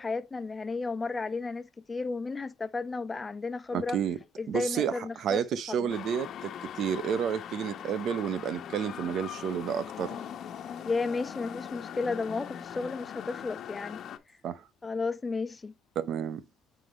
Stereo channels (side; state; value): both; normal; correlation 0.71